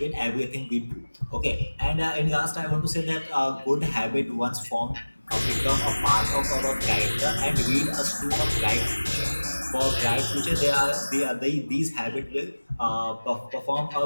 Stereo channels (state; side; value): inverted; both; correlation -1.00